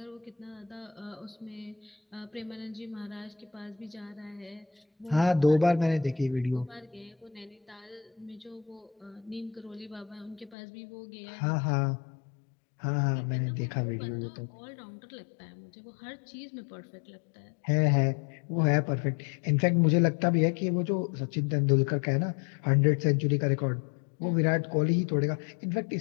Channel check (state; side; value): drops out; right; at 10.6 s